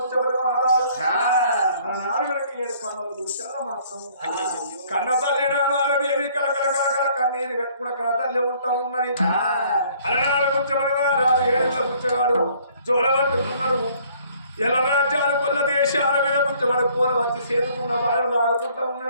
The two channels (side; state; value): both; inverted; correlation -0.59